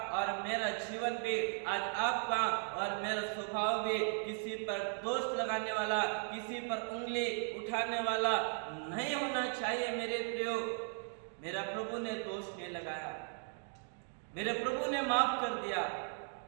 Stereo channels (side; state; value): left; silent; 53 dB below the other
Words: और मेरा जीवन भी, आज आपका और मेरा स्वभाव भी किसी पर दोष लगाने वाला, किसी पर उंगली उठाने वाला नहीं होना चाहिए। मेरे प्रियो, मेरा प्रभु ने दोष नहीं लगाया, मेरे प्रभु ने माफ कर दिया,